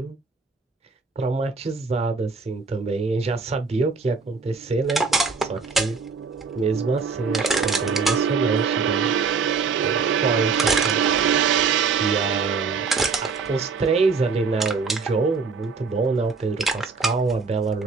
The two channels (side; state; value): left; quieter; 4.9 dB